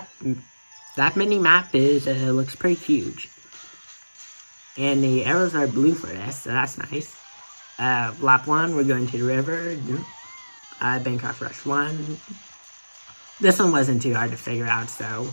mini map is looks pretty huge. And the arrows are blue for this, so that's nice. Lap 1, we're going to the river. Bangkok Rush 1. This one wasn't too hard to figure out, so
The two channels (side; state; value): both; inverted; correlation -1.00